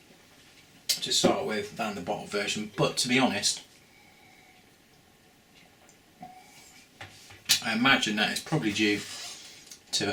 To start with than the bottle version, but to be honest, I imagine that it's probably due to the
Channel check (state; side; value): identical; both; correlation 1.00